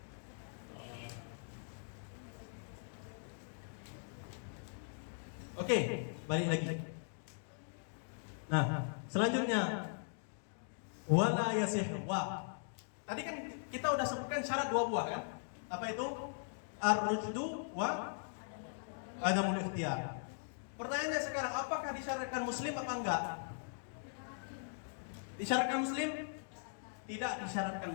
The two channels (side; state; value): right; silent; digital silence